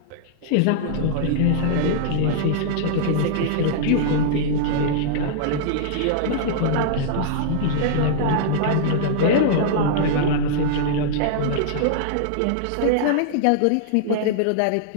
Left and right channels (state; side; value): different; both; correlation -0.01